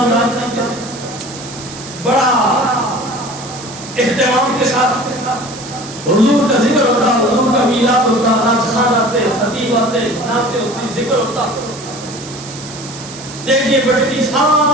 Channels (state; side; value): noise; right; hiss, 14 dB below the sound